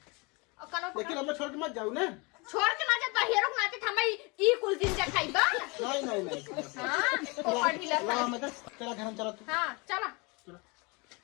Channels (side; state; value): right; quieter; 28.3 dB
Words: कनो लेकिन हमें छोड़ के मत जाओ ना छोड़ के ना जा हीरो नाते हमें ई कुल दिन से खाइबा नहीं नहीं नहीं हां पोपा ढीला ला मैं तेरा घर में चला तू हां चला